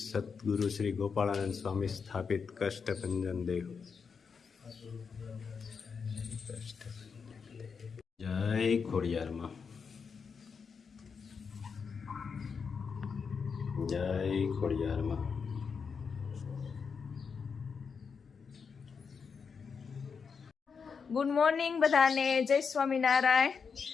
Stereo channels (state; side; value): quieter; right; 5.8 dB